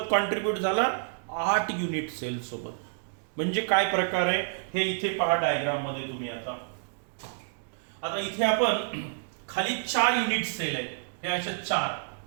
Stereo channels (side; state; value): left; silent; digital silence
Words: कॉन्ट्रीब्यूट झाला? 8 युनिट सेल सोबत. म्हणजे काय प्रकार आहे हे इथे पहा डायग्राम मध्ये तुम्ही. आता इथे आपण खाली 4 युनिट सेल आहेत. हे अशा 4